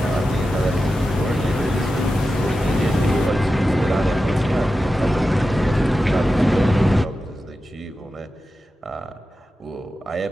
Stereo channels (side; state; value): both; normal; correlation 0.92